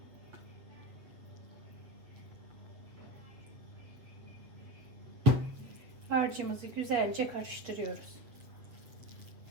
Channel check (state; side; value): late; left; 7.8 ms